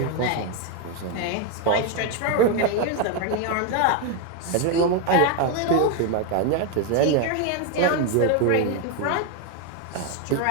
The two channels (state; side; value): different; both; correlation 0.01